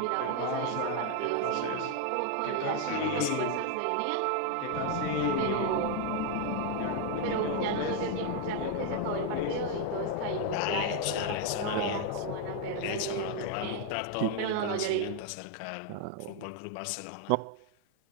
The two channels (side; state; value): both; different; correlation 0.00